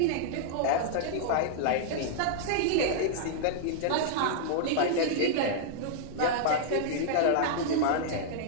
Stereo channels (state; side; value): different; both; correlation -0.01